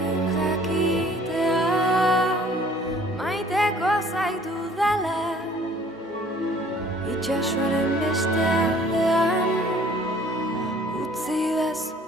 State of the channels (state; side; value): normal; both; correlation 0.55